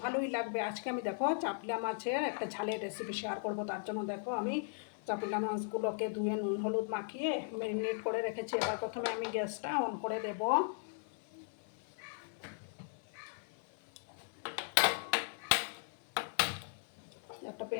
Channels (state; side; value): silent; right; 53 dB below the other